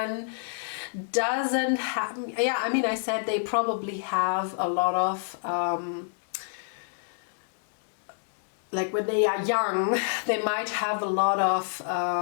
doesn't have, yeah, I mean, I said they probably have a lot of like when they are young, they might have a lot of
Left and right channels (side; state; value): right; silent; digital silence